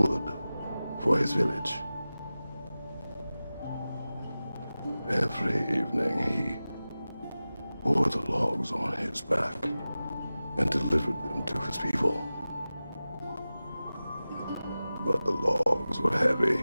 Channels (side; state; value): both; inverted; correlation -0.95